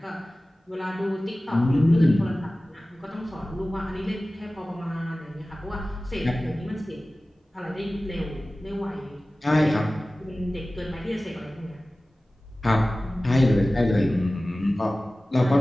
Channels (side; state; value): both; normal; correlation 0.97